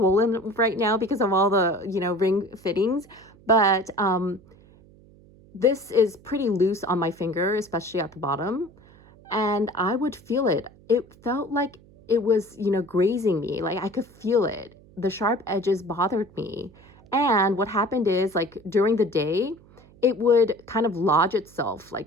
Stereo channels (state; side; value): noise; right; hum, 26 dB below the sound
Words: right now because of all the, you know, ring fittings, but this is pretty loose on my finger, especially at the bottom. And I would feel it. It felt like it was, you know, grazing me. Like I could feel it. The sharp edges bothered me. And what happened is, like during the day, it would kind of lodge itself